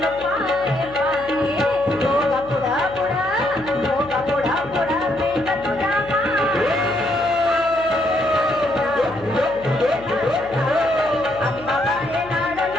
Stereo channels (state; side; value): noise; left; hum, 18 dB below the sound